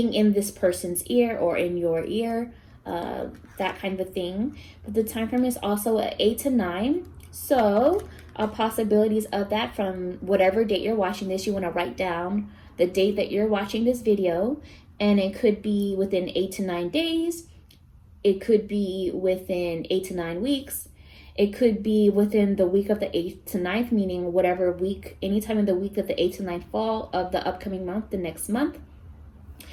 in this person's ear or in your ear, that kind of thing. But the time frame is also at 8 to 9. So possibilities of that from whatever date you're watching this, you want to write down the date that you're watching this video, and it could be within 8 to 9 days. It could be within 8 to 9 weeks. It could be within the week of the 8th to 9th, meaning whatever week, anytime in the week of the 8th to 9th fall of the upcoming month, the next month.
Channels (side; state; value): both; identical; correlation 1.00